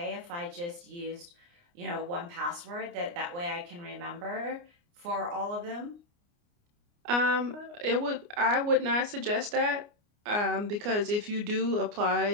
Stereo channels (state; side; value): late; left; 29 ms